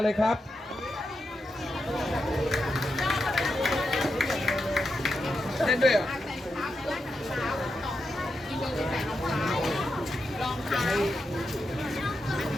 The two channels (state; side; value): normal; both; correlation 0.86